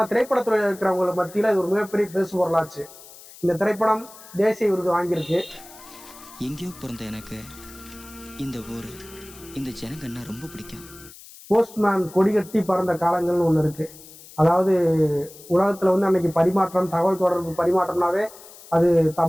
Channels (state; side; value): noise; left; hiss, 19 dB below the sound